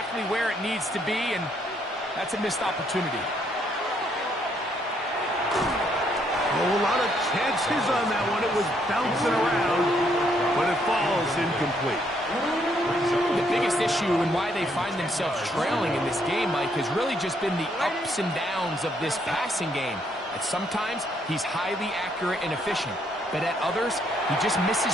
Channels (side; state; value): both; normal; correlation 0.71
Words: where it needs to be, and that's a missed opportunity. A lot of chances on that one. It was bouncing around, but it falls incomplete. The biggest issue and why they find themselves trailing in this game, Mike, has really just been the ups and downs of this passing game. At sometimes, he's highly accurate and efficient, but at others, he just